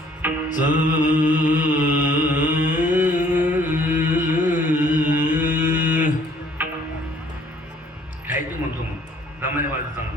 खायचं म्हणतो मग दमाने वाजत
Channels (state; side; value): normal; both; correlation 0.60